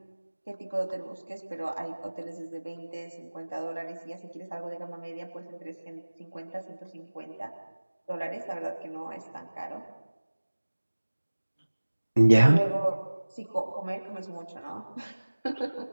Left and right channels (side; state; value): both; inverted; correlation -1.00